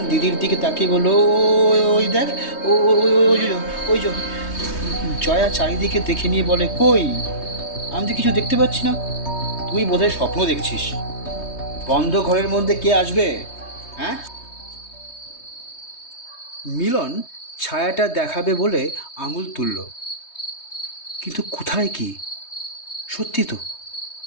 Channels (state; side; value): late; right; 3.2 ms